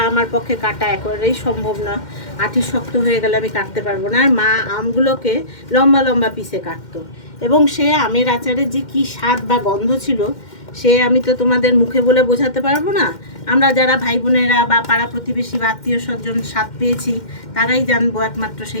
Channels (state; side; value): late; right; 2.1 ms